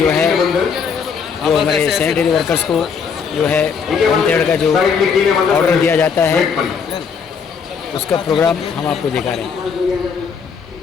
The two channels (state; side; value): quieter; right; 6.2 dB